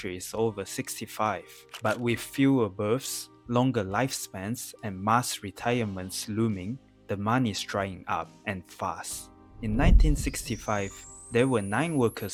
is over 65. But with fewer births, longer lifespans, and mass retirements looming, the money is drying up, and fast. In 1965, there were 9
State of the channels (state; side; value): identical; both; correlation 1.00